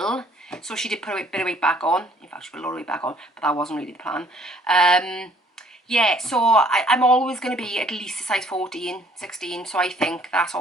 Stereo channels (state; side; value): normal; both; correlation 0.60